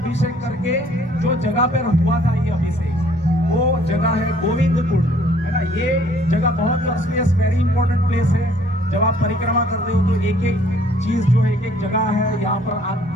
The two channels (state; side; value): normal; both; correlation 0.60